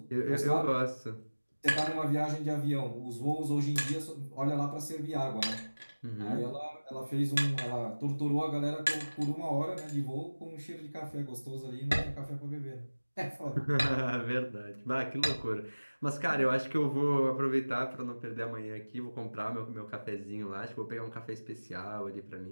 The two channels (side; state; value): both; inverted; correlation -1.00